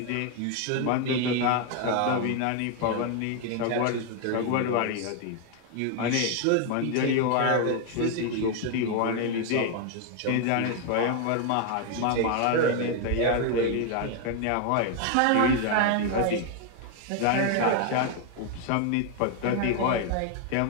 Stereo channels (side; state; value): both; different; correlation 0.01